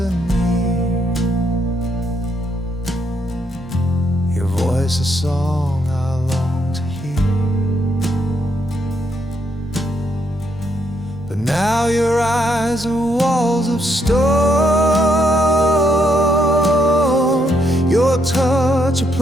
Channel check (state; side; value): normal; both; correlation 0.75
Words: near. Your voice a song I long to hear. But Now your eyes are walls of stone, your touch a